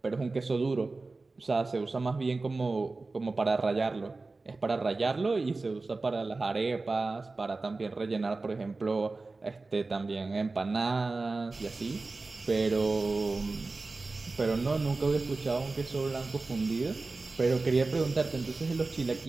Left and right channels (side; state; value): left; quieter; 3.6 dB